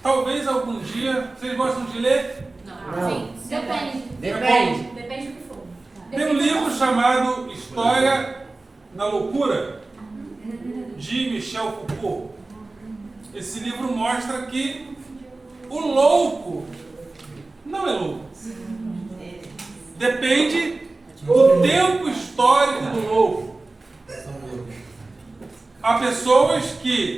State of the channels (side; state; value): left; quieter; 3.2 dB